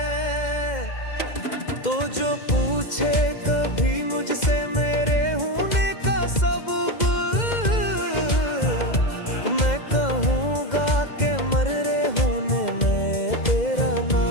तो जो पूछे कभी मुझसे मेरे होने का सबब, मैं कहूँगा कि मरे होने में तेरा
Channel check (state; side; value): late; right; 2.0 ms